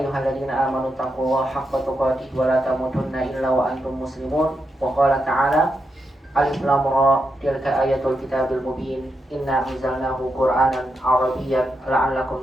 amanu taqullaha haqqa tuqatih wa la tamutunna illa wa antum muslimun. Wa qala ta'ala, alif lam ra tilka ayatul kitabil mubin inna anzalnahu qur'anan arabiyyan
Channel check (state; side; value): normal; both; correlation 0.84